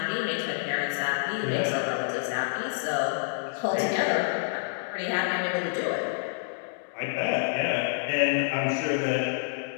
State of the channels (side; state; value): right; silent; digital silence